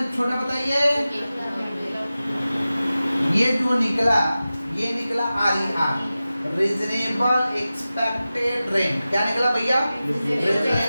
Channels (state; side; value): inverted; both; correlation -0.95